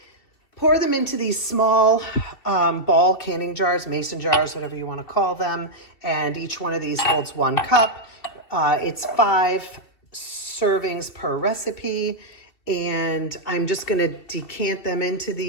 pour them into these small ball canning jars, mason jars, whatever you want to call them. And each one of these holds 1 cup. It's 5 servings per recipe. And I'm just going to decant them into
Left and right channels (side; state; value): right; late; 2.7 ms